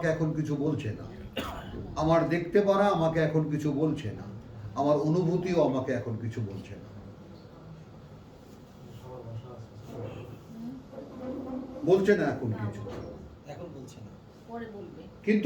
এখন কিছু বলছে না, আমার দেখতে পারা আমাকে এখন কিছু বলছে না, আমার অনুভূতিও আমাকে এখন কিছু বলছে না। বলছে না এখন কিছু, এখন বলছে না, পরে বলবে।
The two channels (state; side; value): identical; both; correlation 1.00